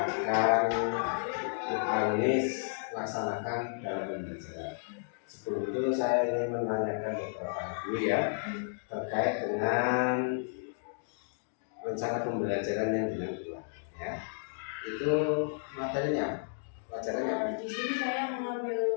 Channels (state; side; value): silent; right; digital silence